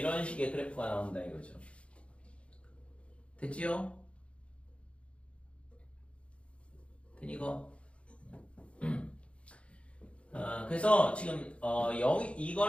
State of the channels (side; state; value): right; late; 0.061 ms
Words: 식의 그래프가 나온다 이거죠. 됐지요? 되니 이거? 그래서 지금